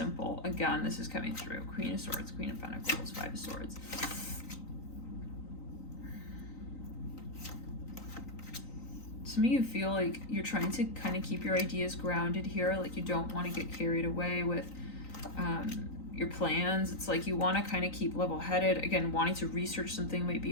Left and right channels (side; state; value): right; late; 3.9 ms